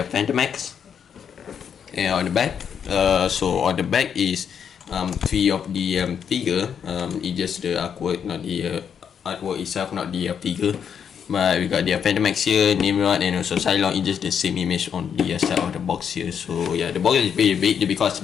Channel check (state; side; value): quieter; right; 7.7 dB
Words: Fantomex. And on the back, so on the back is 3 of the figure. It's just the artwork, not the artwork itself, not the figure. But we got the Fantomex here, Nimrod, and also Pyslock. It's just the same image on the side of the box here. So yeah, the box is pretty big because